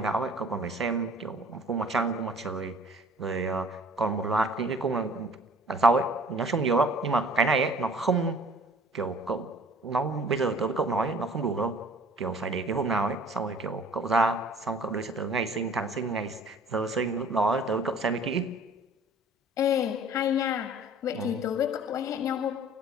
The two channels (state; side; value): normal; both; correlation 0.51